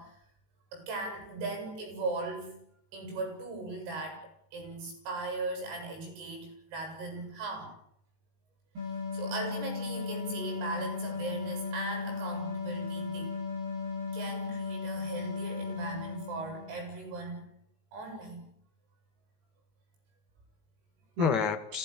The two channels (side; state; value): left; late; 19 ms